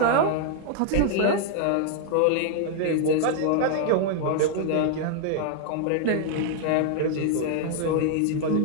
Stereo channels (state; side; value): different; both; correlation 0.00